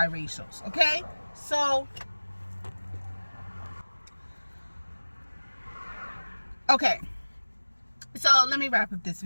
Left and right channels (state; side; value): inverted; both; correlation -1.00